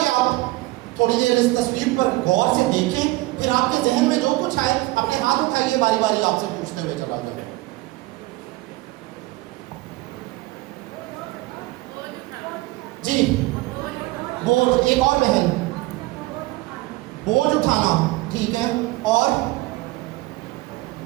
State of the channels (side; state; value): left; quieter; 20.1 dB